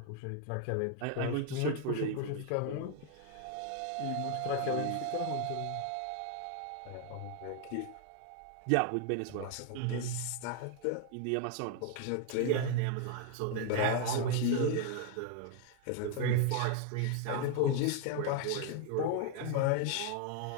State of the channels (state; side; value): different; both; correlation 0.00